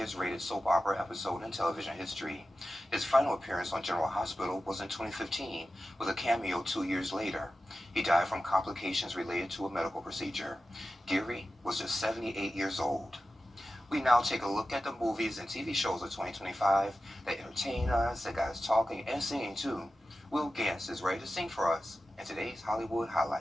soap opera episode in television history. His final appearance on General Hospital was in 2015, with a cameo 2 years later. He died from complications related to a medical procedure. Geary was just 78 years old. We now take a look at the movies and TV shows of 2025 that entertain us, that got us talking and singing too. Will Gantz is ready to sing for us in today's Hollywood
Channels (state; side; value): normal; both; correlation 0.93